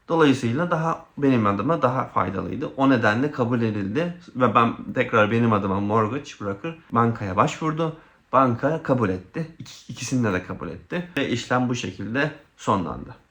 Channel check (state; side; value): identical; both; correlation 1.00